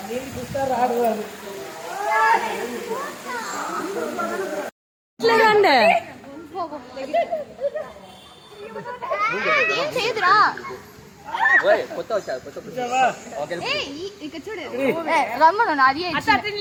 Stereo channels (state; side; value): identical; both; correlation 1.00